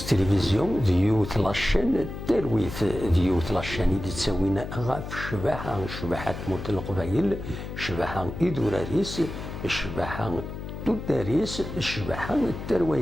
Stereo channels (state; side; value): noise; left; hum, 8 dB below the sound